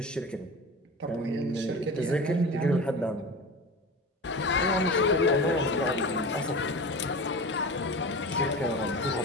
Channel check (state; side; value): normal; both; correlation 0.31